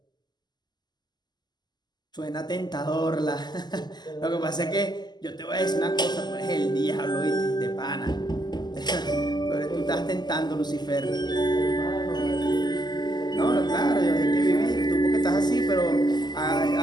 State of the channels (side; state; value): right; late; 0.21 ms